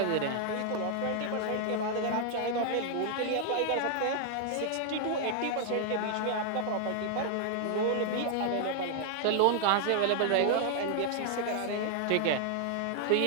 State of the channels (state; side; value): different; both; correlation 0.00